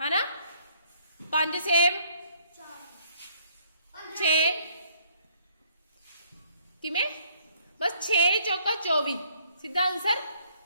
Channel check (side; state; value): both; inverted; correlation -0.64